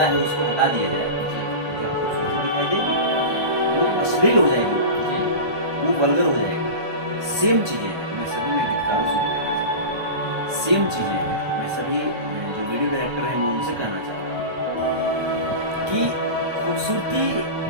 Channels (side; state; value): left; late; 1.3 ms